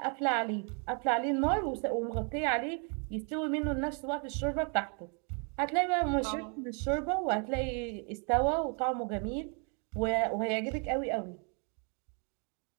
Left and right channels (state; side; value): quieter; left; 38.1 dB